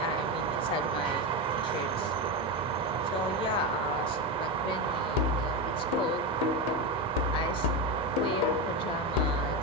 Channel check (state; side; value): normal; both; correlation 0.14